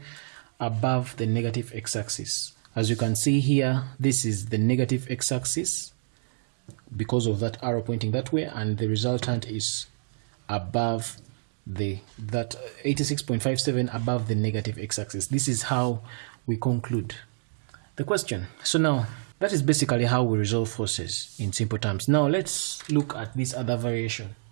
above the negative x-axis. As you can see here, this is the negative x-axis because of that arrow pointing that way, and the resultant is above that 86.57 above the negative x-axis. This is how we conclude the question. So now that is basically how we resolve forces in simple terms. Now let's look at this other variation.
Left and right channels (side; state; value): left; silent; digital silence